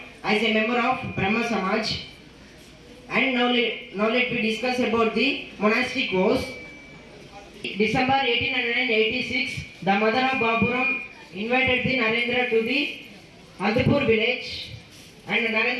as a member of Brahma Samaj. And now let me discuss about the monastic vows. December 1886, the mother of Baburam invited the Narendra to the Andhpur village, and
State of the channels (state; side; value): identical; both; correlation 1.00